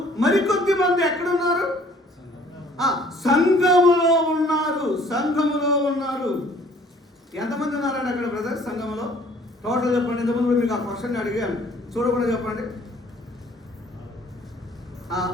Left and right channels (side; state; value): both; normal; correlation 0.56